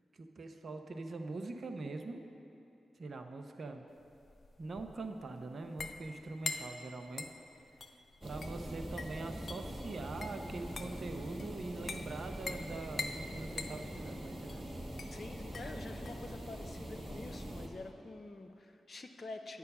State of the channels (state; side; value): normal; both; correlation 0.90